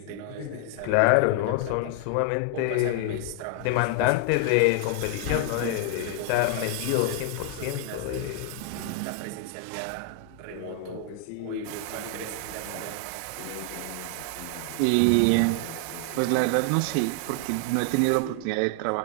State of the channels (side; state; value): both; different; correlation 0.00